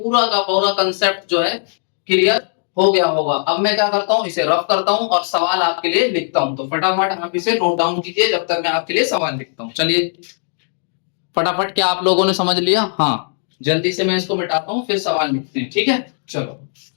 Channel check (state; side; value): silent; right; 67 dB below the other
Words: का पूरा कंसेप्ट जो है क्लियर हो गया होगा। अब मैं क्या करता हूं, इसे रफ करता हूं और सवाल आपके लिए लिखता हूं। तो फटाफट आप इसे नोट डाउन कीजिए जब तक मैं आपके लिए सवाल लिखता हूं। चलिए फटाफट, क्या आप लोगों ने समझ लिया? हाँ, जल्दी से मैं इसको मिटाता हूं फिर सवाल लिखते हैं। ठीक है, चलो